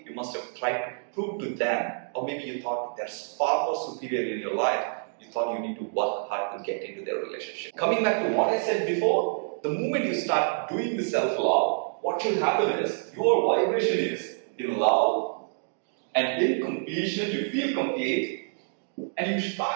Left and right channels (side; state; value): left; silent; digital silence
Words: you must have tried to prove to them, or maybe you thought they're far more superior in your life. You thought you need to work hard to get into their relationship. Coming back to what I said before, the moment you start doing the self-love, what will happen is your vibration is in love, and in completion, you feel complete, and you